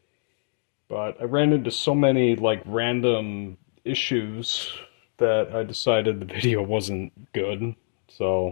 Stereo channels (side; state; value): right; silent; digital silence